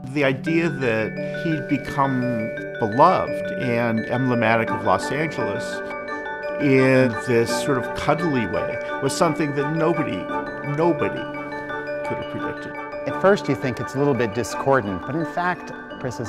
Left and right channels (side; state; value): both; identical; correlation 1.00